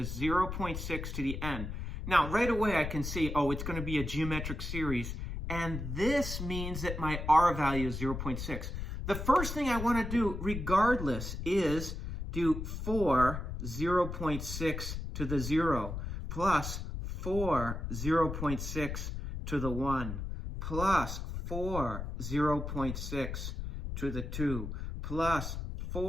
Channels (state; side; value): noise; left; rumble, 5 dB below the sound